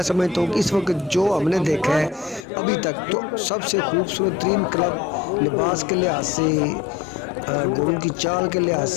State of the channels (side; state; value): right; drops out; at 2.5 s